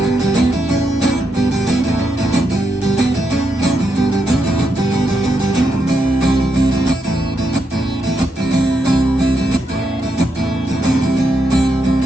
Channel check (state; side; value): normal; both; correlation 0.82